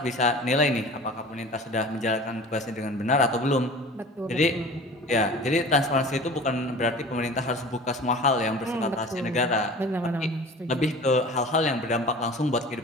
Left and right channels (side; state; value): both; normal; correlation 0.40